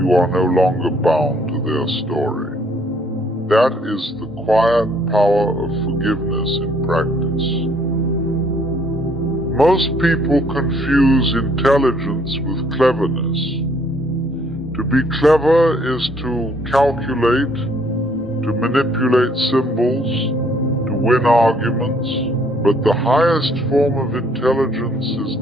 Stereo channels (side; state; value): both; normal; correlation 0.64